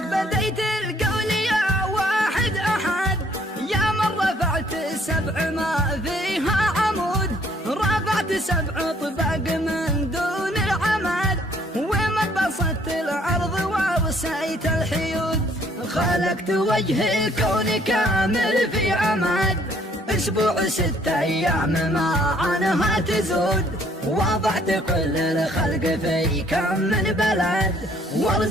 بديت القول يا واحد أحد، يا من رفعت السبع ما فيها عمود، رفعت 7 طباق من دون العمد، ومن بسطت الأرض ووسعت الحيود، خلقت وجه الكون كامل في عمد، أسبوع 6 أيام ما عنها تزود، وضعت كل الخلق في كم من بلد،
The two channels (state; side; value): normal; both; correlation 0.63